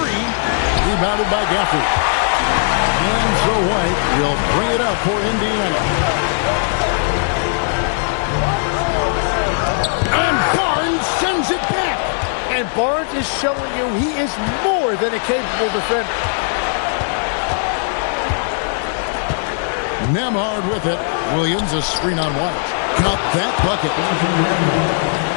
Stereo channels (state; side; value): silent; right; digital silence